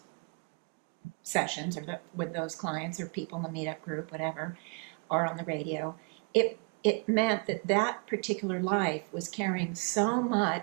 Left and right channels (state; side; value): quieter; left; 35.4 dB